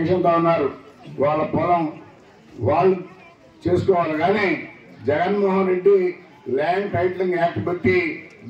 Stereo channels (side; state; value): both; identical; correlation 1.00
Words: ఉన్నారు. వాళ్ళ పొలం వాళ్ళు చేసుకోవాలి. కానీ Jaganmohan Reddy land titling act పెట్టి